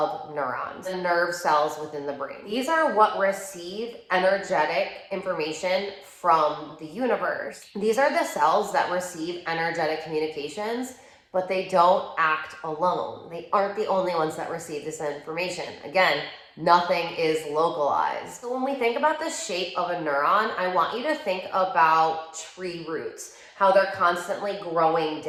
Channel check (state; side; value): identical; both; correlation 1.00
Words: neurons, the nerve cells within the brain. These are what receive energetic information from the universe. These are the cells that receive energetic communications, but they don't act alone. They aren't the only ones that receive this information. Again, nothing is localized. So when we think about the shape of a neuron, I want you to think about tree roots, how they're constantly growing